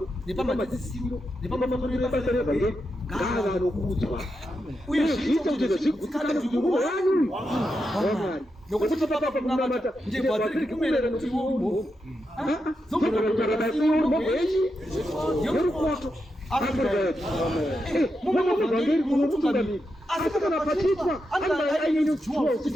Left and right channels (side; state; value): both; normal; correlation 0.86